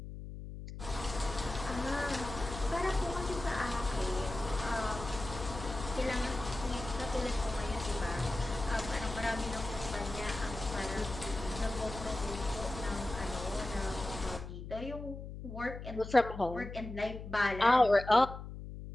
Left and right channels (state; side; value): noise; left; hum, 10 dB below the sound